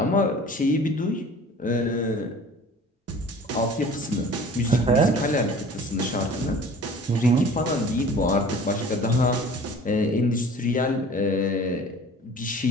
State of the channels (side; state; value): both; normal; correlation 0.45